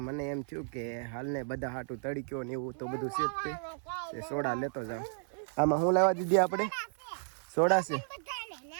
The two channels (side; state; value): left; silent; 56 dB below the other